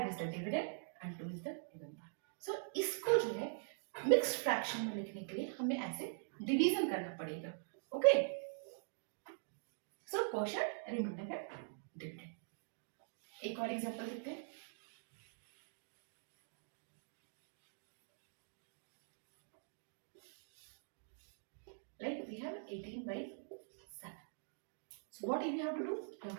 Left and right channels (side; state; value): left; silent; digital silence